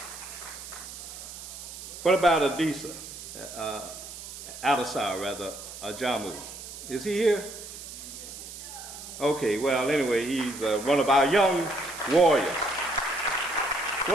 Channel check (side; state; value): right; noise; hiss, 12 dB below the sound